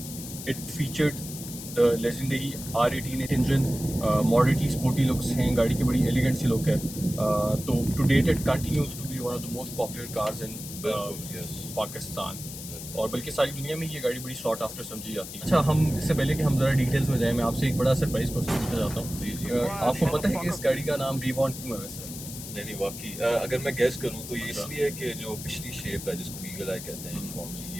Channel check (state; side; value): noise; left; hiss, 11 dB below the sound